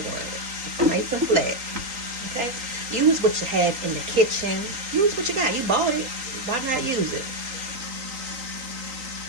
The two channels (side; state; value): left; late; 3.9 ms